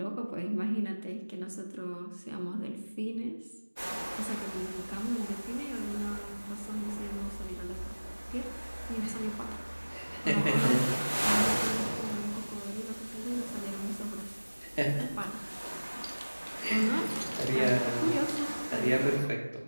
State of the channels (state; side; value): inverted; both; correlation -1.00